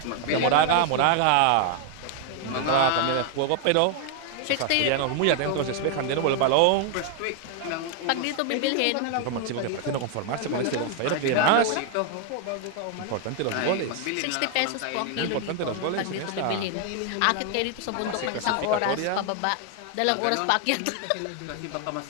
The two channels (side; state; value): both; different; correlation 0.00